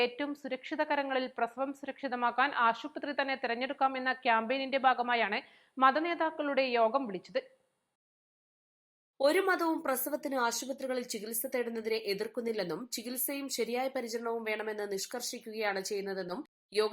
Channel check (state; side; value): identical; both; correlation 1.00